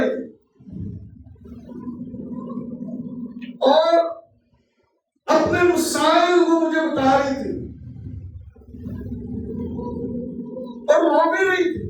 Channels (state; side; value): identical; both; correlation 1.00